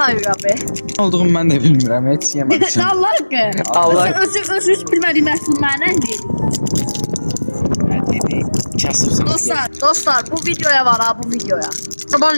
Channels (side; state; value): both; inverted; correlation -1.00